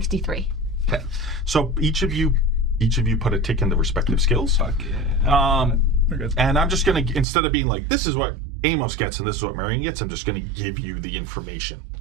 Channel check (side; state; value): left; drops out; at 7.2 s